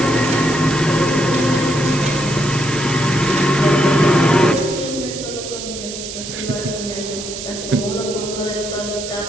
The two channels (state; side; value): noise; right; hiss, 9 dB below the sound